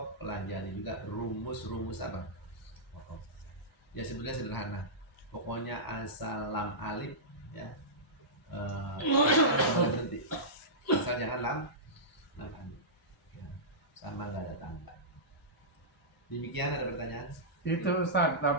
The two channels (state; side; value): normal; both; correlation -0.16